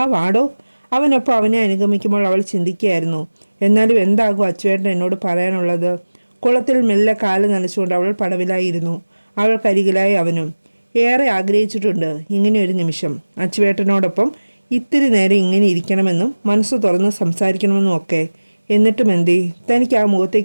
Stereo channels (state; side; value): inverted; both; correlation -1.00